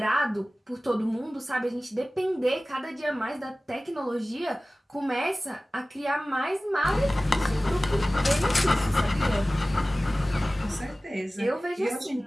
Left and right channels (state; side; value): normal; both; correlation 0.97